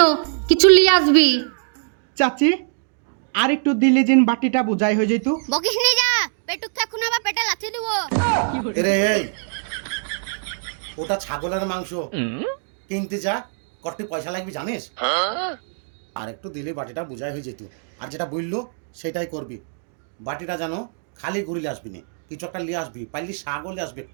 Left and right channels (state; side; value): silent; left; digital silence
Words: কিছু লিয়ে আসবি। চাচি আর একটু দিলে জিন বাটিটা বুঝাই হয়ে যেত। বকিস নি, যা পেটুক এখন আবার পেটে লাথি দিব। এরে এই, ওটা ছাগলের মাংস কিনতে যা, কত পয়সা লাগবে জানিস? আর একটু দিলে বাটিটা বুঝাই হয়ে যেত। আর যেটা বললো সেটাই করবি। বাটিটা জানো খালি ঘুরিলে আসবি না, কিছু একটা নিয়ে আসবি, পাইলি শাকও নিয়ে আসবি